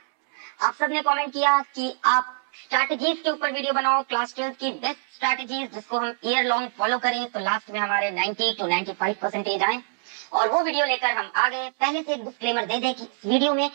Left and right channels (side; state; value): left; silent; 62 dB below the other